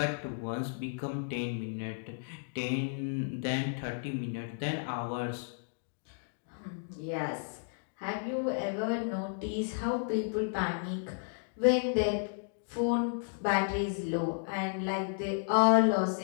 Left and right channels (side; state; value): right; silent; digital silence